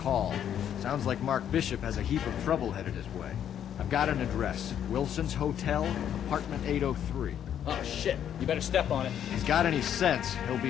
Sounds like Mark Bishop has a heap of trouble headed his way. I've got an address. Wilson's Hotel, apartment 803. Oh shit, you better step on it. If he's got any sense, he'll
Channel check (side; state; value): right; quieter; 9.6 dB